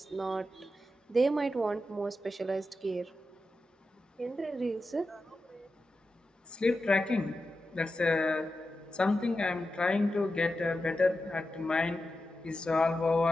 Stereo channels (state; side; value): normal; both; correlation 0.90